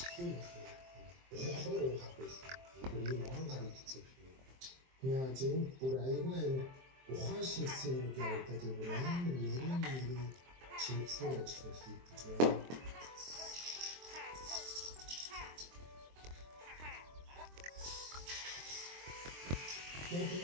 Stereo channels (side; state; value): left; late; 23 ms